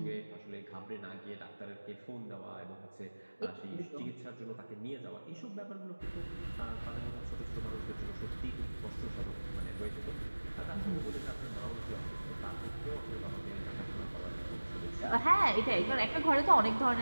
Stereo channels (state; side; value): inverted; both; correlation -1.00